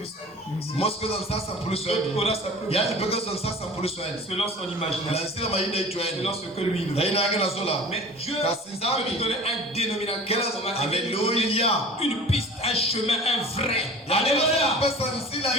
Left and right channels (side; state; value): both; normal; correlation 0.41